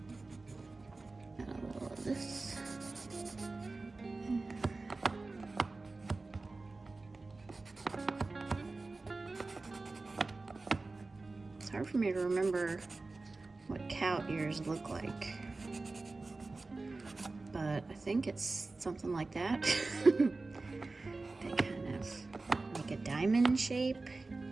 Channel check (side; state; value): left; quieter; 3.5 dB